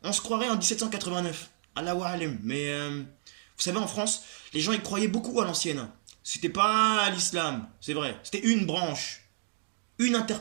on se croirait en 1789, Allahu alim. Mais vous savez, en France, les gens y croyaient beaucoup à l'ancienne. C'était pas l'islam, c'est vrai. C'était une branche, une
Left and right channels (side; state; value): left; silent; digital silence